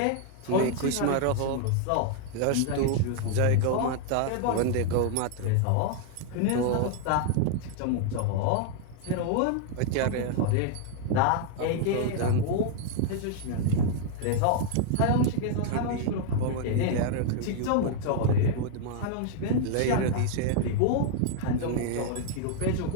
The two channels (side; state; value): both; different; correlation 0.00